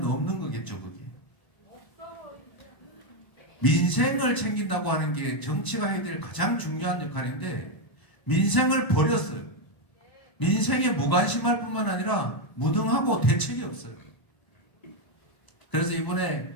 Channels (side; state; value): right; late; 1.0 ms